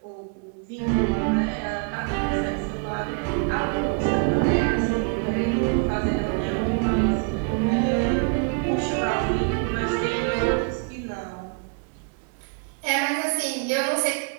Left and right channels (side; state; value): left; quieter; 37.8 dB